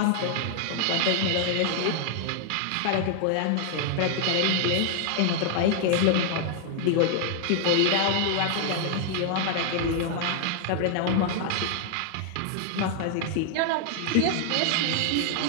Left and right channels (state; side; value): different; both; correlation 0.00